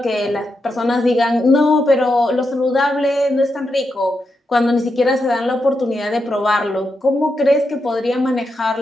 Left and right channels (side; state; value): both; normal; correlation 0.85